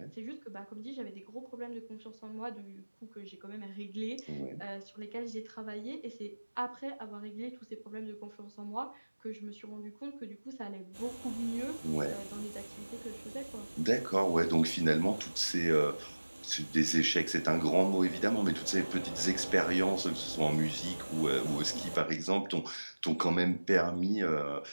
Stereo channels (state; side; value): inverted; both; correlation -1.00